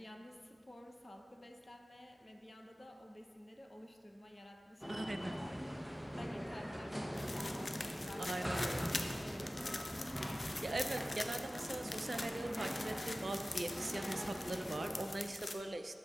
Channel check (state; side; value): normal; both; correlation 0.96